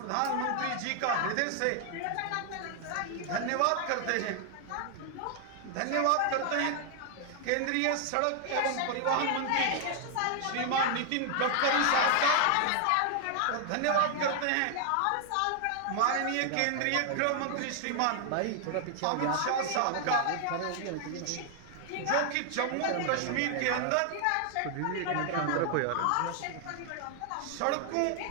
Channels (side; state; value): both; different; correlation 0.00